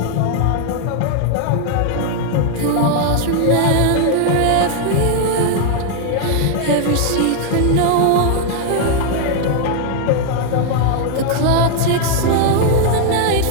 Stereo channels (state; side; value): different; both; correlation 0.00